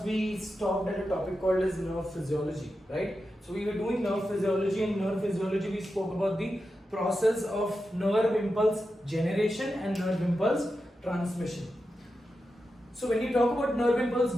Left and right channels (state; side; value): normal; both; correlation 0.90